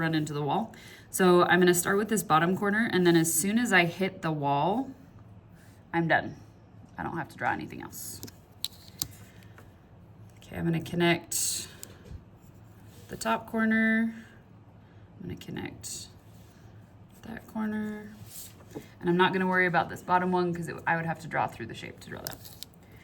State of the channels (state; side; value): identical; both; correlation 1.00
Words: into the wall. So I'm gonna start with this bottom corner, and then as soon as I hit the wall, I'm done. I don't have to draw anything else. Okay, I'm gonna connect the top corner. I'm gonna connect that corner. And I'm not gonna worry about this bottom one because I would have to draw through the shape to draw that.